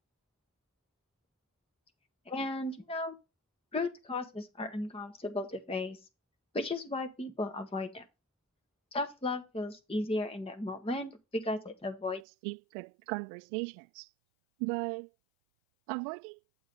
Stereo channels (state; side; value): drops out; left; at 12.2 s